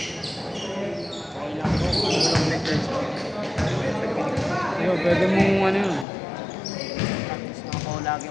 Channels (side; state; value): right; drops out; at 6.1 s